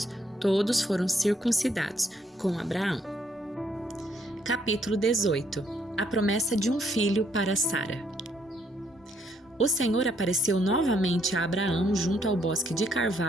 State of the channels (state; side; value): normal; both; correlation 0.70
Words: Todos foram circuncidados com Abraão. Capítulo 18. A promessa de um filho para Sara. O Senhor apareceu novamente a Abraão junto ao bosque de